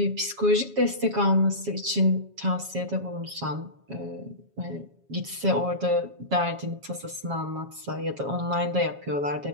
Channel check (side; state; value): left; late; 7.3 ms